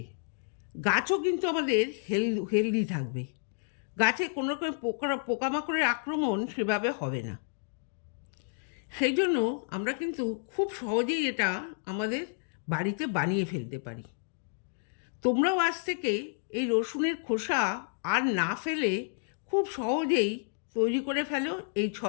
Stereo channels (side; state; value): right; silent; digital silence